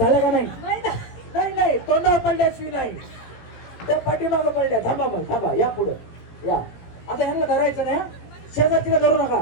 का? नाही नाही, तोंडावर पडल्याशिवाय नाही. त्या पाठीमागं पडल्या. थांबा मग, थांबा, या पुढं या. आता ह्यांना धरायचं नाही, शेजारतीला धरू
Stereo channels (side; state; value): right; late; 17 ms